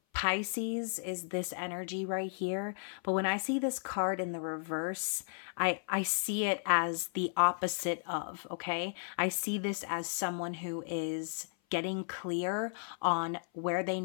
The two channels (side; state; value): right; silent; 55 dB below the other